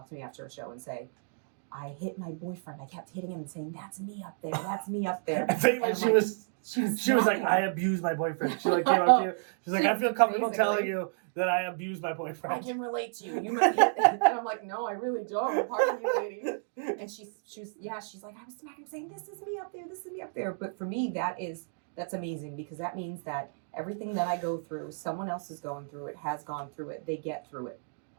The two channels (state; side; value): silent; left; digital silence